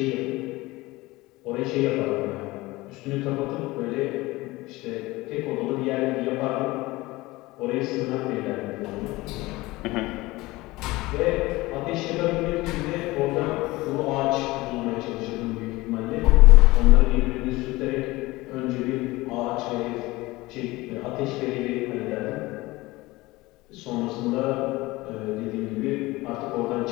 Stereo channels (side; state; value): right; quieter; 20.4 dB